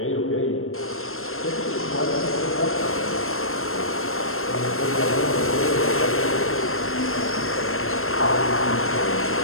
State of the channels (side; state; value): right; late; 0.61 ms